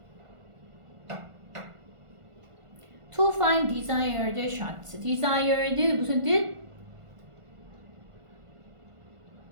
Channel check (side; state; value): left; late; 1.5 ms